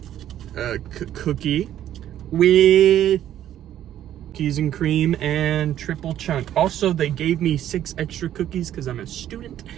cookie with cookies and cream and triple chunk. Also, they gave me 6 extra cookies because I'm a student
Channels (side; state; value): left; quieter; 11.5 dB